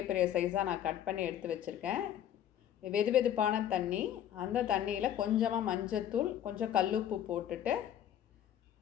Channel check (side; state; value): right; quieter; 10.7 dB